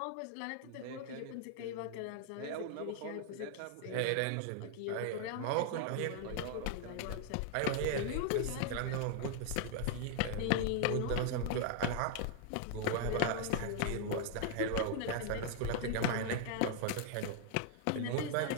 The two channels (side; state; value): both; different; correlation 0.00